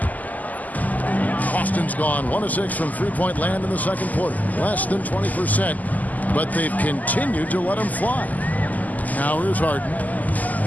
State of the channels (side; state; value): right; late; 0.080 ms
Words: Boston's gone 1 of 6 from three-point land in the second quarter. Less than 20%, but they've continued to let him fly. Now here's Harden.